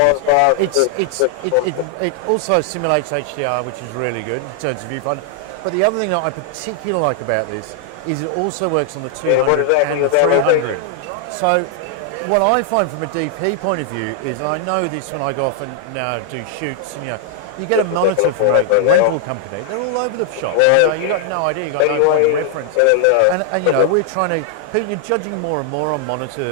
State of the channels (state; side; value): different; both; correlation 0.00